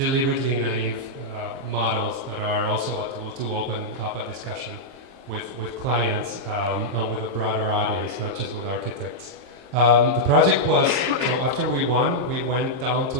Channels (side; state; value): left; late; 23 ms